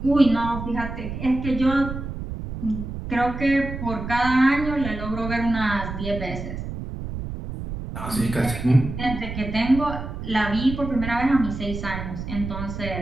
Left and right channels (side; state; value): right; noise; rumble, 7 dB below the sound